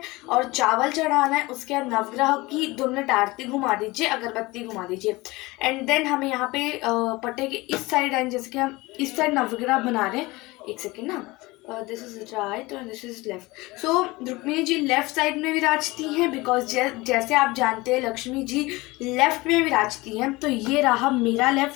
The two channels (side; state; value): right; quieter; 21.8 dB